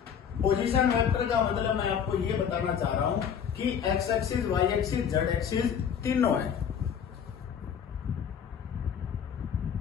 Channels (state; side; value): quieter; right; 7.9 dB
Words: Position vector का मतलब मैं आपको ये बताना चाह रहा हूं कि x axis, y axis, z axis तीनों है।